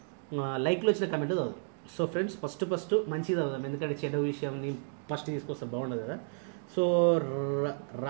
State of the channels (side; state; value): left; silent; digital silence